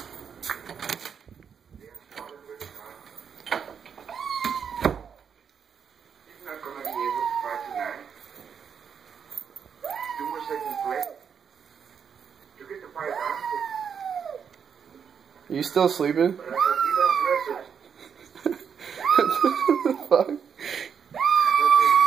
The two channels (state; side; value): quieter; left; 7.1 dB